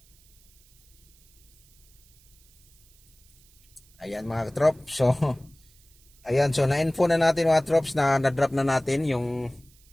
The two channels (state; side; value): noise; right; hiss, 29 dB below the sound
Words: Ayan mga katrops. So ayan, so na-info na natin mga trops na na-drop na natin yung